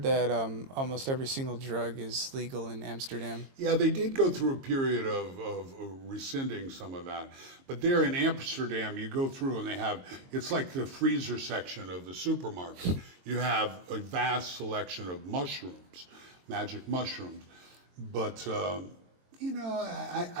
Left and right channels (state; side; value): late; left; 22 ms